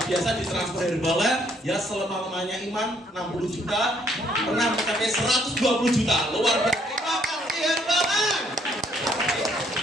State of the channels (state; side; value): normal; both; correlation 0.67